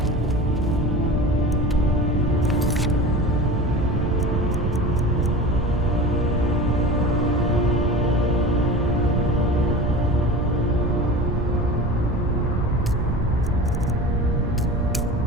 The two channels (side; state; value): right; noise; rumble, 2 dB below the sound